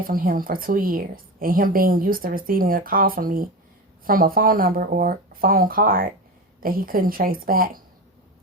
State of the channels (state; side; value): normal; both; correlation 0.24